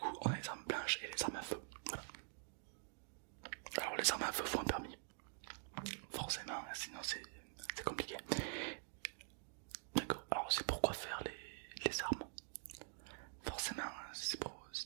on a les armes blanches et les armes à feu. Voilà. Alors, les armes à feu font un permis. Forcément, sinon c'est compliqué. D'accord. Alors, c'est pourquoi faire les armes. Forcément, si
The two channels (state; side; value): silent; left; digital silence